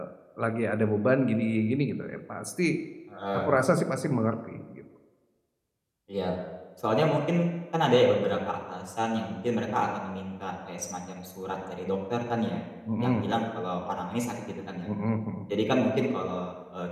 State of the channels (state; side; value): identical; both; correlation 1.00